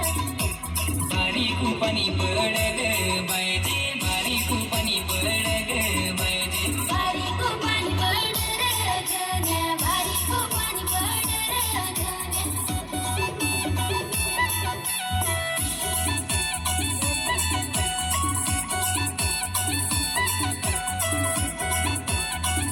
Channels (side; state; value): both; identical; correlation 1.00